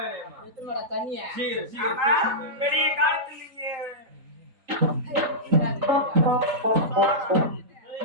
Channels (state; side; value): late; left; 3.8 ms